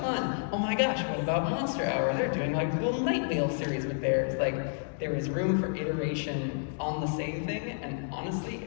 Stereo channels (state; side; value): silent; right; digital silence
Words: Oh my gosh, what about Monster Hour? They're doing like a little Night Wheel series with theirs. Like, there is room for iteration on the same thing, and honestly,